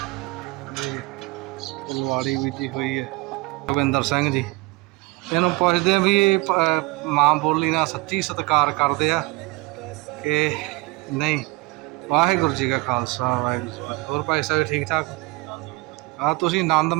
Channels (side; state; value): left; quieter; 23.7 dB